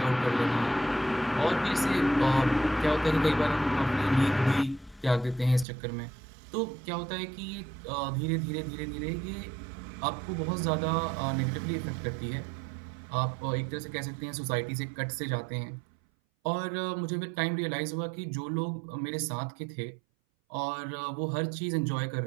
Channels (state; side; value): drops out; left; at 5.7 s